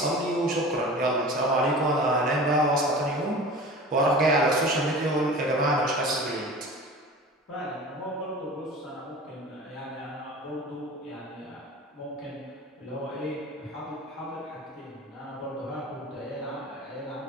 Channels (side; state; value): both; normal; correlation 0.37